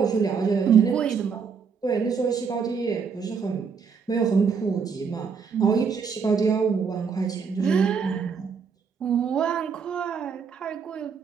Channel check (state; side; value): quieter; left; 6.0 dB